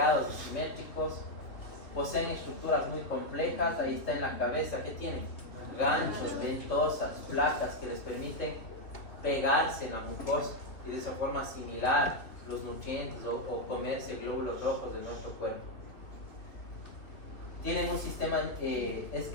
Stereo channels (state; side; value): late; right; 3.2 ms